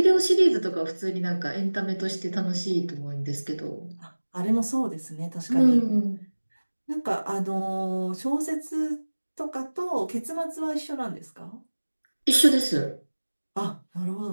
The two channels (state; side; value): inverted; both; correlation -1.00